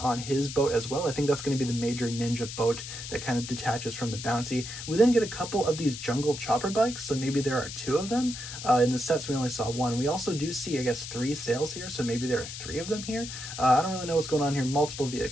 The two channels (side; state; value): left; noise; hiss, 9 dB below the sound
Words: on his boat as well. I think that's going to be the major ninja boat that kind of detaches from the bounty. We then get a couple of these jungle chopper bikes, so maybe there are two of them. In the sets, we only saw one. We also do see, I guess, 3 sails here, so maybe there are 3 of them here. I don't really know what's going on here. Multiple